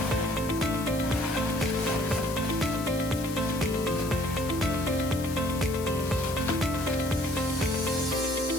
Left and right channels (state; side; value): noise; left; hiss, 13 dB below the sound